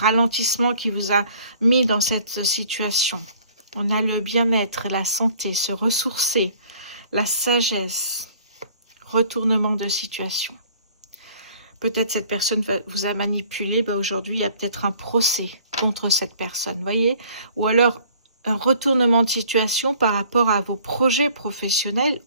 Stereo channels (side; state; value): both; inverted; correlation -0.54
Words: qui vous a mis dans cette situation. On a le bien-être, la santé, se ressourcer, la sagesse, retournement de situation. Peut-être cette personne vous a manipulé. Ben aujourd'hui, il y a peut-être un procès contre cette personne, voyez. Ou alors un retournement de situation par rapport à vos projets professionnels